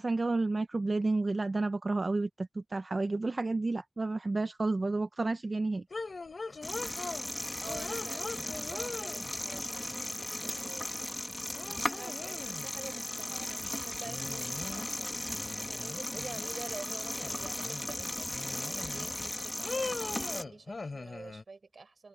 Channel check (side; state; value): both; normal; correlation 0.97